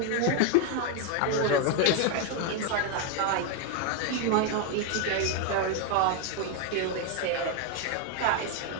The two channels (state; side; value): different; both; correlation 0.01